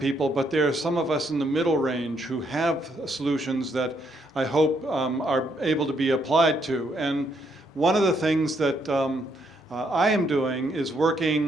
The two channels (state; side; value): normal; both; correlation 0.73